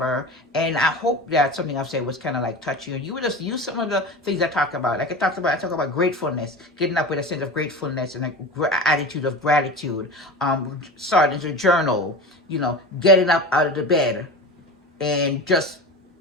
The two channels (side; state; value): both; normal; correlation 0.30